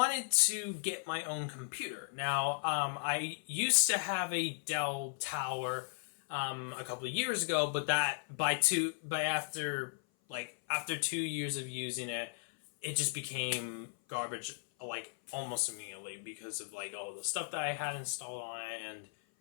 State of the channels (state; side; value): silent; right; 54 dB below the other